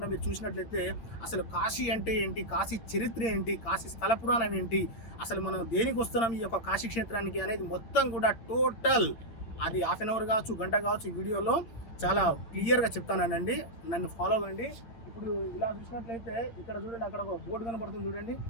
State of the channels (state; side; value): late; right; 8.7 ms